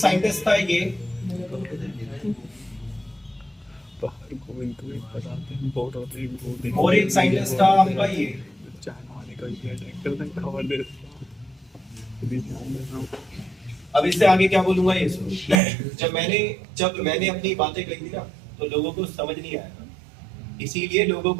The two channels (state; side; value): drops out; left; at 15.6 s